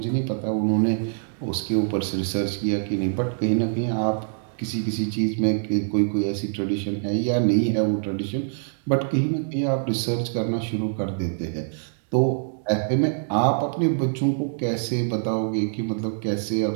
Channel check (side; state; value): left; silent; 62 dB below the other